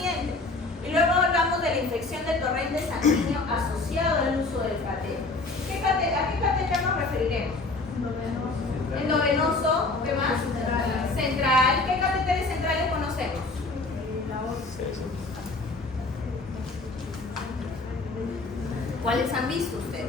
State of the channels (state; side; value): quieter; right; 3.4 dB